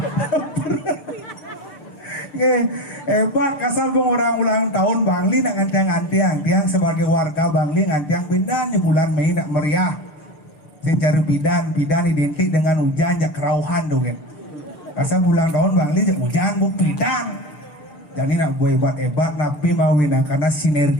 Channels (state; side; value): late; right; 6.7 ms